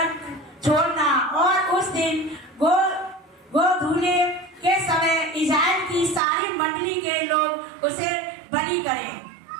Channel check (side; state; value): left; drops out; at 6.2 s